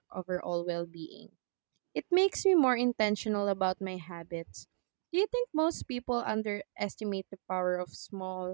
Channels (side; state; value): left; silent; digital silence